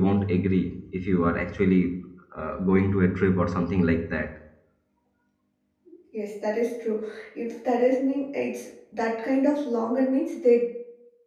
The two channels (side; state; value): both; identical; correlation 1.00